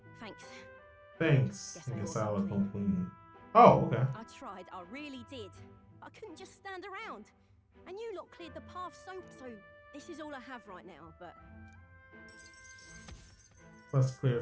Thanks. Thanks. Guess I I guess will I'll come come clean. Oh, okay. I tried, I really did. I couldn't just stand around. And you lot cleared the path so this is all I have right now, but Plus clear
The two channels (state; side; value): identical; both; correlation 1.00